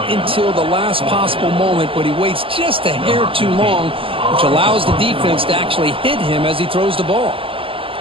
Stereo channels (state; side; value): late; left; 0.26 ms